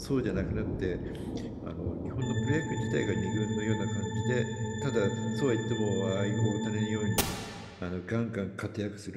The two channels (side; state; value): both; identical; correlation 1.00